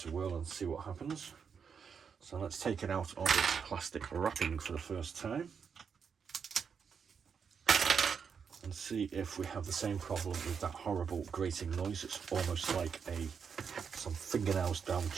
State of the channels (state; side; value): quieter; left; 6.5 dB